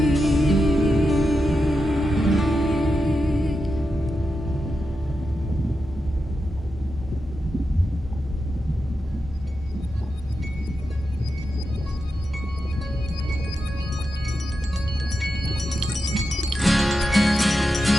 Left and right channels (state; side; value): normal; both; correlation 0.88